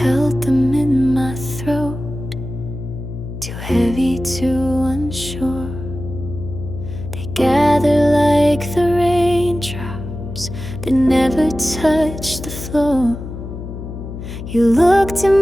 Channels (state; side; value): noise; left; hum, 9 dB below the sound